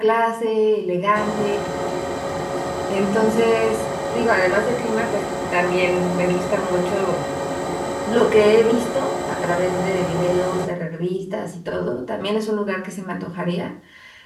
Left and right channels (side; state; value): both; identical; correlation 1.00